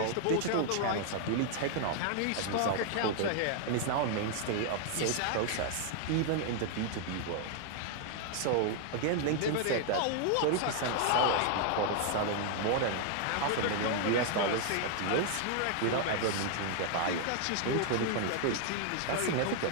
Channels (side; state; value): both; different; correlation 0.00